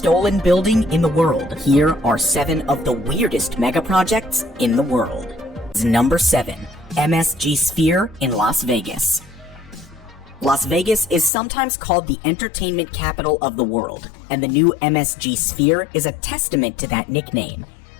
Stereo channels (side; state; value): right; drops out; at 11.3 s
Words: building in the world, here are 7 of the weirdest megaprojects in the world. Number 7. MSG Sphere in Las Vegas. Las Vegas is sometimes called the entertainment capital of the world, and the new MSG Sphere is a testament to that nickname.